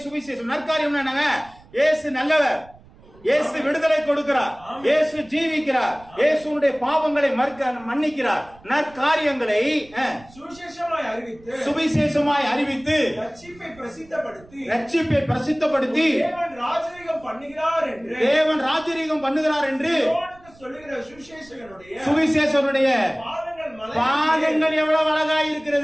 சுவிசேஷம். நற்காரியம் என்னங்க? இயேசு நல்லவர், இயேசு விடுதலை கொடுக்கிறார், இயேசு ஜீவிக்கிறார், இயேசுடைய பாவங்களை மன்னிக்கிறார். நற்காரியங்களை சுவிசேஷமாய் அறிவித்து ரட்சிப்பை பிரசித்தப்படுத்தி தேவன் ராஜரீகம் பண்ணுகிறார் என்று சொல்லுகிற சுவிசேஷனுடைய பாதங்கள் எவ்வளவு அழகா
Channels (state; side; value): noise; right; rumble, 25 dB below the sound